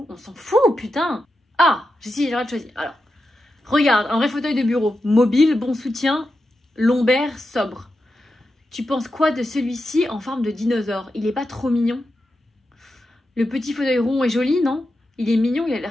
On s'en fout, putain! Ah, j'ai le droit de choisir. Alors, regarde, un vrai fauteuil de bureau. Mobile, bon soutien, lombaire, sobre. Tu penses quoi de celui-ci en forme de dinosaure? Il est pas trop mignon? Le petit fauteuil rond est joli, non? Il est mignon, il a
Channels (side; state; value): both; normal; correlation 0.89